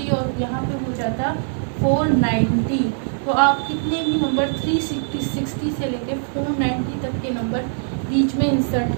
और यहाँ पे हो जाता 490। तो आप कितने भी नंबर 360 से लेके 490 तक के नंबर बीच में इंसर्ट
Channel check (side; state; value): left; silent; digital silence